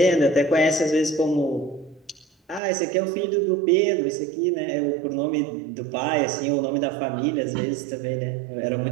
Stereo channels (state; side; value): drops out; left; at 2.6 s